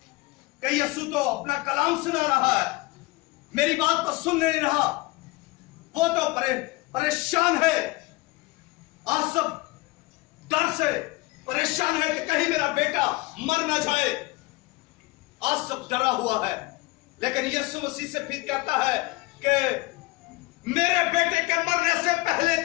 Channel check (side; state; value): right; quieter; 22.3 dB